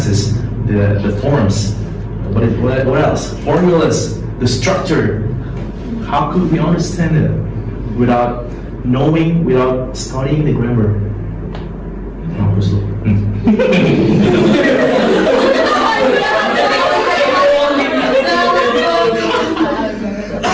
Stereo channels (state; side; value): identical; both; correlation 1.00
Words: the forms? What else? Formulas, the structure. How could we understand it without knowing, without studying the grammar?